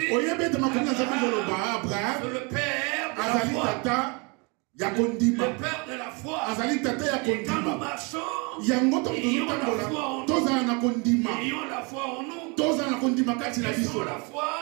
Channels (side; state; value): left; quieter; 31.2 dB